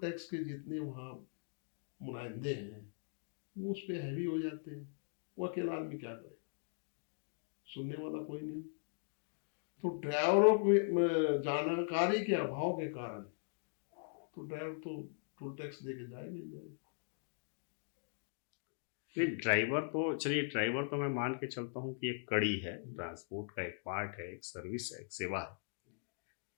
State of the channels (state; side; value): silent; right; digital silence